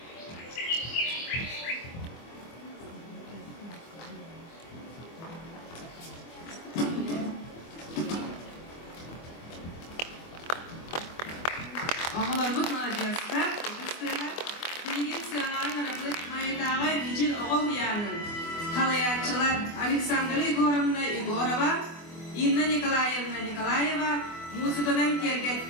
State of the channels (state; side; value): late; right; 24 ms